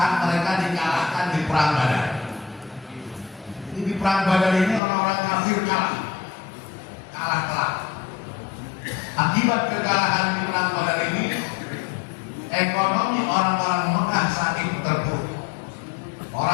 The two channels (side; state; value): right; drops out; at 4.8 s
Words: mereka dikalahkan di perang Badar. Jadi di perang Badar ini orang-orang kafir kalah telak. Akibat kekalahan di perang Badar ini, ekonomi orang-orang Mekah saat itu terpuruk.